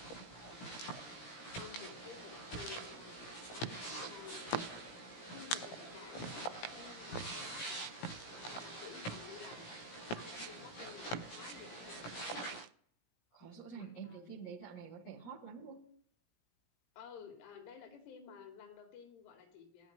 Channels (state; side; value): late; right; 17 ms